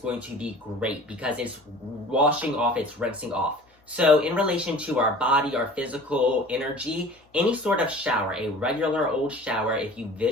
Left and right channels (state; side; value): normal; both; correlation 0.44